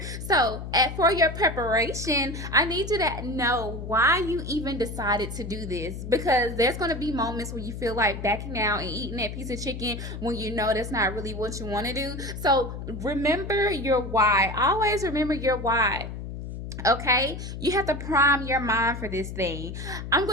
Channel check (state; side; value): noise; left; hum, 8 dB below the sound